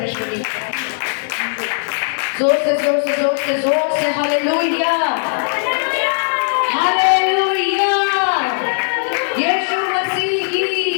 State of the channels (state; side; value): silent; right; digital silence